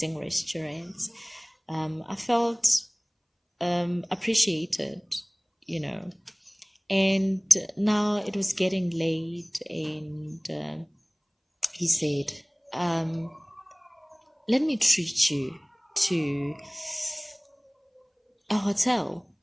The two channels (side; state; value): both; identical; correlation 1.00